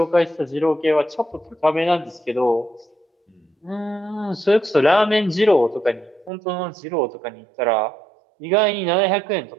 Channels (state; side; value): drops out; left; at 6.3 s